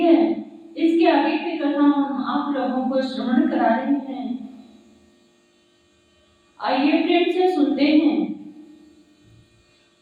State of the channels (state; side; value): identical; both; correlation 1.00